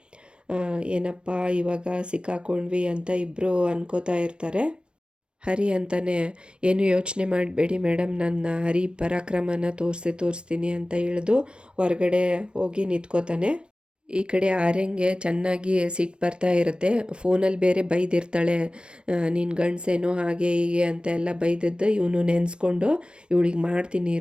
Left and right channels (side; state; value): left; late; 0.055 ms